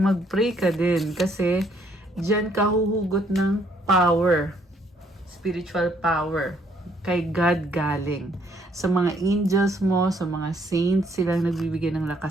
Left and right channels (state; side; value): normal; both; correlation 0.67